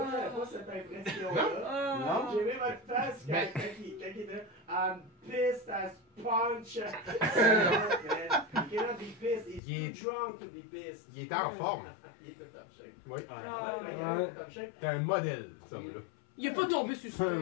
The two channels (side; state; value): right; drops out; at 9.6 s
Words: pas cette impression-là. Oh. J'ai aimé votre face quand, Mais- quand il était I'm pissed as punch. You cannot be pissed, he's Il est- drunk to be pissed. Il était en forme. Il était top shape. Oui. Ah. Top shape. T'es un modèle, ce homme-là. Il est pas tombé sur le